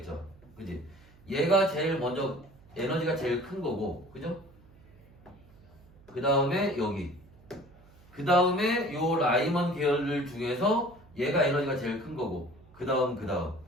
그지? 얘가 제일 먼저, 에너지가 제일 큰 거고, 그죠? 그 다음에 여기. 그 다음에 요 라이먼 계열들 중에서 얘가 에너지가 제일 큰 거고, 그 다음.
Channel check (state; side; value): noise; right; hum, 25 dB below the sound